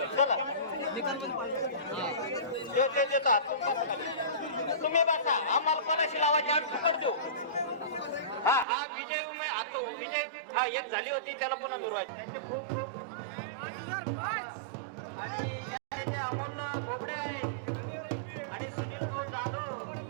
चला ते देतात तुम्ही बसा आम्हाला कोणाशी लावायची आम्ही फुकट देऊ हा विजय आता विजय हा एक झाली होती त्याला पुन्हा मिळवायची त्यांचे खूप खूप आणि अमोल बोबडे आहेत आणि सुनील भाऊ जाधव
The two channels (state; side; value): drops out; left; at 8.7 s